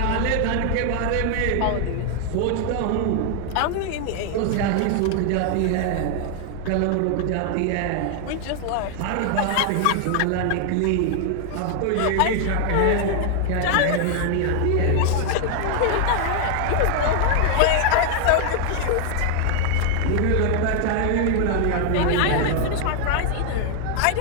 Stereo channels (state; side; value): different; both; correlation 0.00